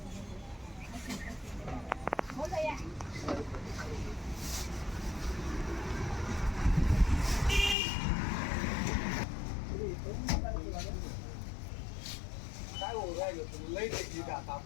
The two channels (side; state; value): right; drops out; at 7.8 s